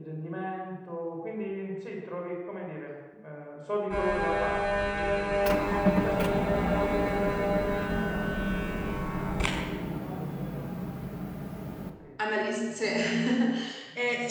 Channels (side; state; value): both; identical; correlation 1.00